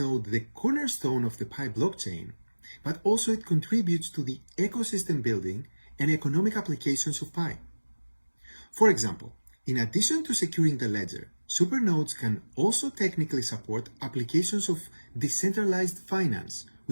the cornerstone of the Pi blockchain, but also it contributes to the ecosystem building and economic applications of Pi. For example, in addition to securing the ledger, supernodes can also technically support applications of decentralized finance,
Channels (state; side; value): inverted; both; correlation -1.00